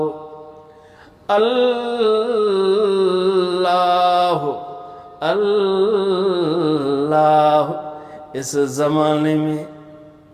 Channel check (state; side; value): identical; both; correlation 1.00